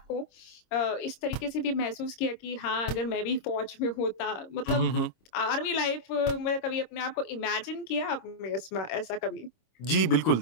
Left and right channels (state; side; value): late; right; 26 ms